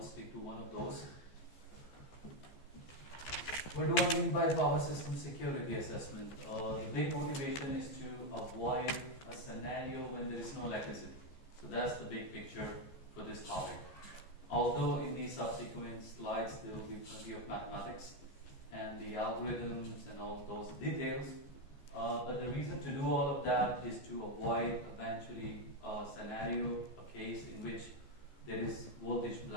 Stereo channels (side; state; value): right; late; 14 ms